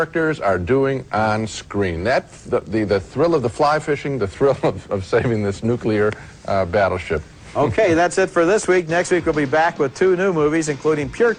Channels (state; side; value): identical; both; correlation 1.00